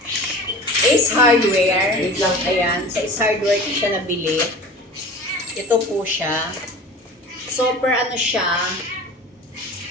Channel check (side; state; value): both; normal; correlation 0.38